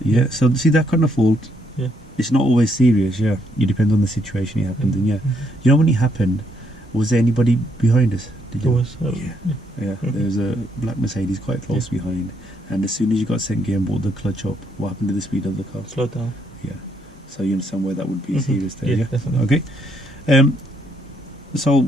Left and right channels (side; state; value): both; normal; correlation 0.73